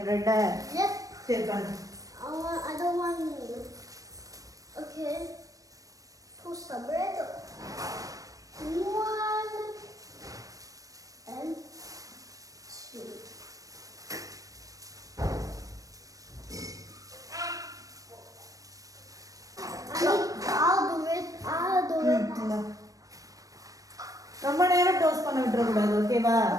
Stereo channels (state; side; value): late; left; 0.16 ms